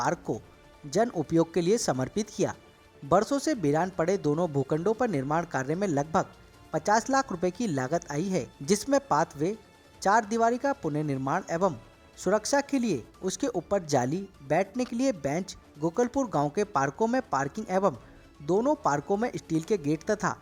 को जन उपयोग के लिए समर्पित किया। वर्षों से वीरान पड़े दोनों भूखंडों पर निर्माण कार्य में लगभग 50 लाख रुपए की लागत आई है, जिसमें पाथवे, 4 दीवारी का पुनर्निर्माण एवं सुरक्षा के लिए उसके ऊपर जाली, बैठने के लिए बेंच, गोकलपुर गाँव के पार्कों में पार्किंग एवं दोनों पार्कों में स्टील के गेट तथा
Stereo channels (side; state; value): both; identical; correlation 1.00